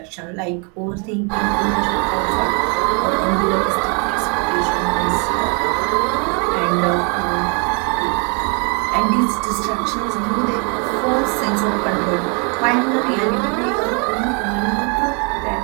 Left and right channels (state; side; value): quieter; left; 35.6 dB